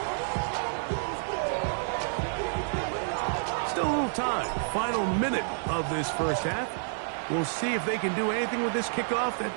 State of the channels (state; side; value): silent; left; digital silence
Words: Still a little time. Final minute of this first half. We'll see if they can do anything with this kickoff that